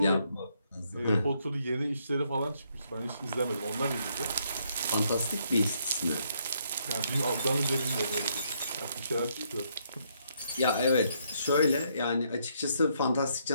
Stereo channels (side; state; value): both; inverted; correlation -0.73